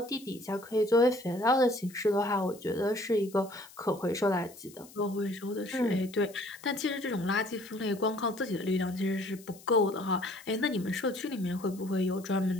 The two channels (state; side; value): noise; left; hiss, 21 dB below the sound